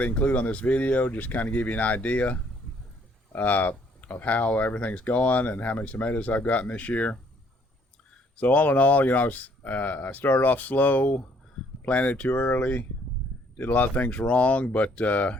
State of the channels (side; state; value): both; normal; correlation 0.64